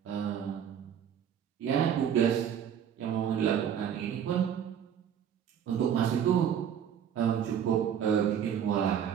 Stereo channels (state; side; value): quieter; left; 8.8 dB